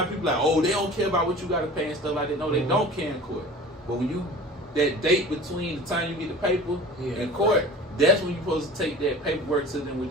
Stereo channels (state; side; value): normal; both; correlation 0.41